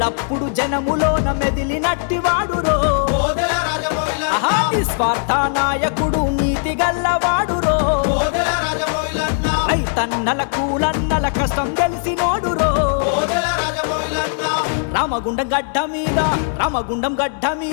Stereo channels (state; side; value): silent; right; digital silence